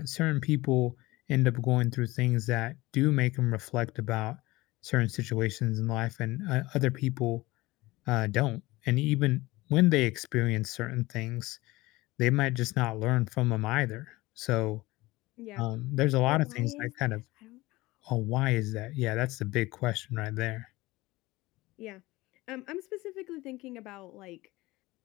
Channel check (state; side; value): quieter; right; 20.1 dB